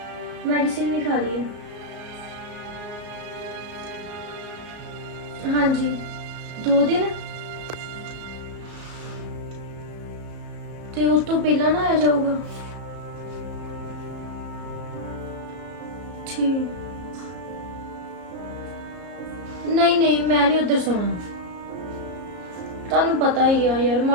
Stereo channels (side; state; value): left; late; 34 ms